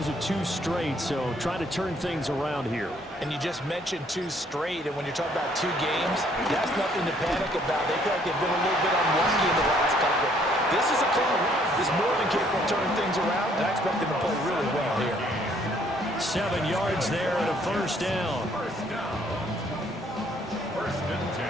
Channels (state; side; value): normal; both; correlation 0.64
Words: of 2 straight, so try to turn things around here. And you just mentioned 2 straight, and when you're talking about 2 games, that's nothing to panic about. They feel like they've been a little bit unlucky in the last couple. This is a club that's more than capable of turning things around, and I expect them to play really well here. 7 yards there and a 1st down. 1st and 10